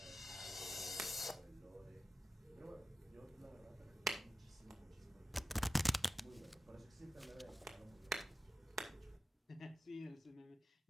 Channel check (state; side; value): normal; both; correlation 0.92